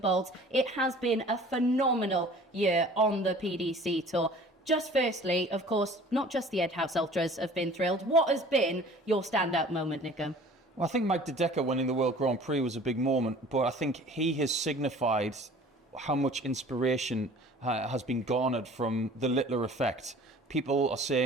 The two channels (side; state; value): both; normal; correlation 0.47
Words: it has been a phenomenal year on the PDC Tour. Just firstly, of course, not just the Edhouse Ultras have been thrilled. What has been your standout moment, Nico? Well, I think Mike De Decker winning the World Grand Prix was a big moment, but I think he has signified how much inspiration has been garnered from the Littler effect. People are